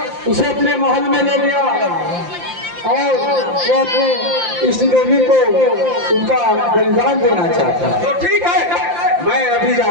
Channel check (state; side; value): late; left; 5.8 ms